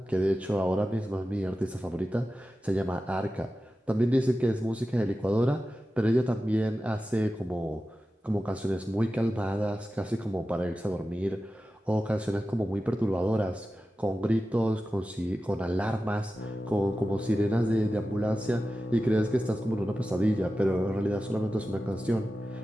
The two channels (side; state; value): both; normal; correlation 0.93